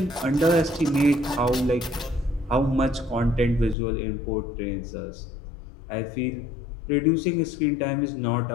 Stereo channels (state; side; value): drops out; right; at 3.8 s